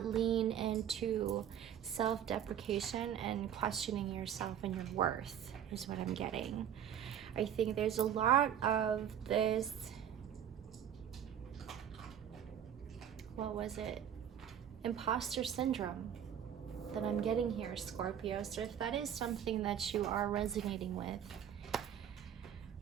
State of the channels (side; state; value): left; quieter; 9.4 dB